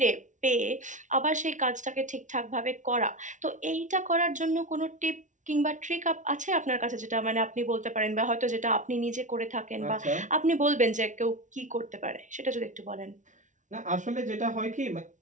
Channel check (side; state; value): left; late; 0.37 ms